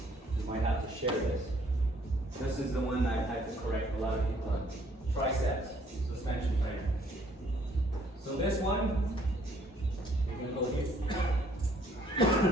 You might have to share this. This is the one I had to correct a lot of people on. Triceps, suspension trainer. So this one, you're gonna go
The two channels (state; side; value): normal; both; correlation 0.63